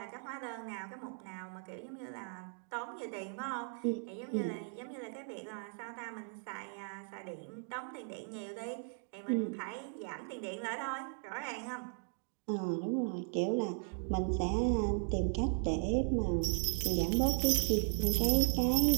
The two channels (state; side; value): silent; left; 53 dB below the other